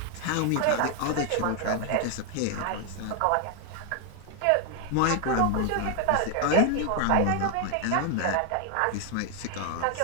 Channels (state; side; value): different; both; correlation 0.00